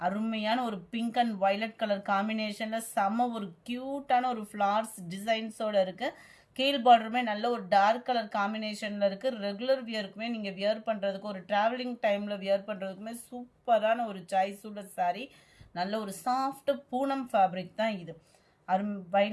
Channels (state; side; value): identical; both; correlation 1.00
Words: அருமையான ஒரு பிங்க் அண்ட் வயலட் கலர் காம்பினேஷனில் செம்ம ஒரு க்யூட்டான ஒரு ஃப்ளார்ஸ் டிசைன்ஸோடு இருக்குது. கீழ் பார்டருமே நல்ல ஒரு டார்க் கலர் காம்பினேஷனில் இருக்குது. ரெகுலர் வியருக்குமே நீங்கள் வியர் பண்ணுறதுக்கு, ஒரு ட்ராவலிங் டைமில் வியர் பண்ணுறதுக்குமே சூப்பரான ஒரு சாய்ஸ் உள்ள சாரீ. நல்ல ஒரு சாஃப்ட் பூனம் ஃபேப்ரிக் தான் இது.